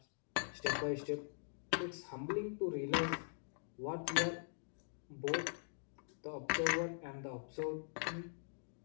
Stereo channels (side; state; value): right; silent; digital silence